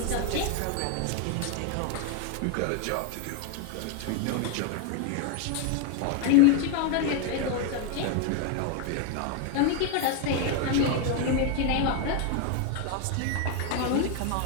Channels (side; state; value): both; different; correlation 0.01